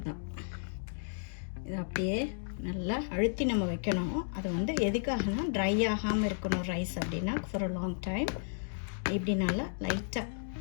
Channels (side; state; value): right; silent; digital silence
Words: இது அப்படியே நல்லா அழுத்தி நம்ம வைக்கணும். அது வந்து எதுக்காகனா ட்ரை ஆகாமல் இருக்கணும் ரைஸ் அப்படின்னா ஃபார் அ லாங் டைம். இப்படி நல்லா லைட்டாக